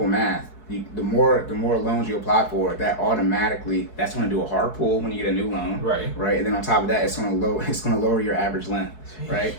math. the more loans you apply for, that automatically that's going to do a hard pull when you get a new loan, right? And then on top of that, it's going to lower your average length, right?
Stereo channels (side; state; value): right; late; 4.7 ms